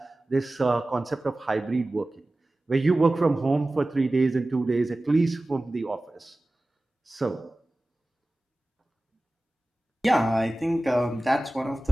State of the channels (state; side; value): normal; both; correlation 0.97